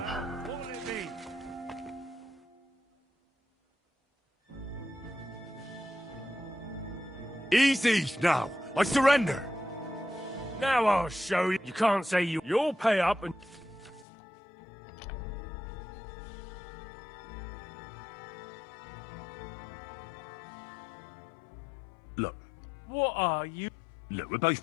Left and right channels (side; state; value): right; drops out; at 14.1 s